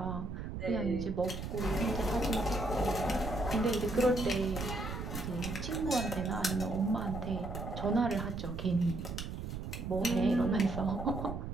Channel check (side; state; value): right; noise; rumble, 6 dB below the sound